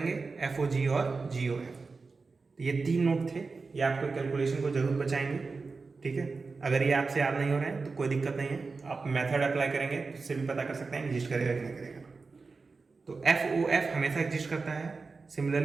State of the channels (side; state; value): left; quieter; 4.3 dB